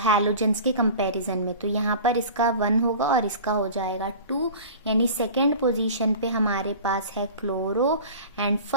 के कंपैरिजन में। तो यहाँ पर इसका 1 होगा और इसका हो जाएगा 2, यानी सेकेंड पोजीशन पे हमारे पास है क्लोरो एंड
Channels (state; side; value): inverted; both; correlation -0.39